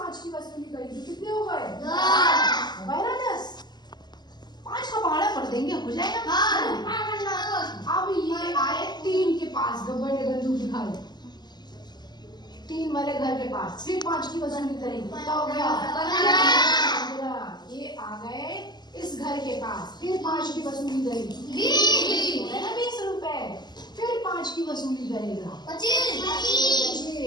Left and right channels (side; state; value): right; late; 0.21 ms